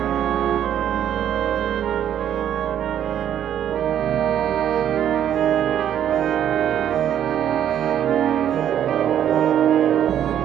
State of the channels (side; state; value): left; quieter; 10.2 dB